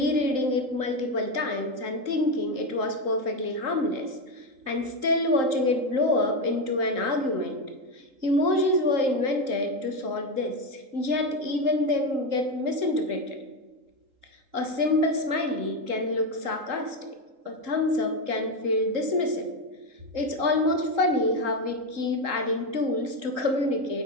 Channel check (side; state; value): left; late; 3.8 ms